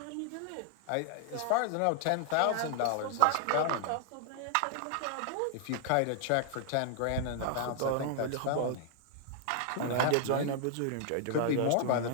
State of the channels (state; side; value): different; both; correlation 0.00